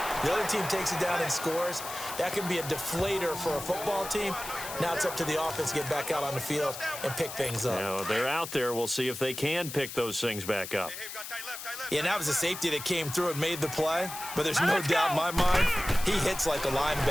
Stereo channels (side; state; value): left; noise; hiss, 9 dB below the sound